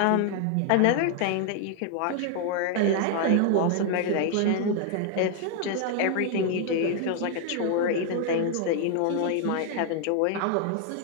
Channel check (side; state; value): both; different; correlation 0.00